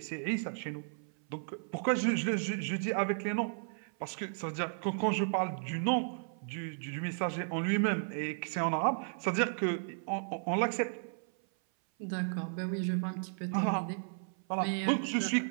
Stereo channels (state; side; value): silent; left; 55 dB below the other